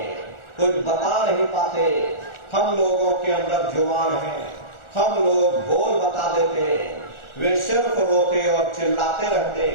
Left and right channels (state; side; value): late; right; 1.4 ms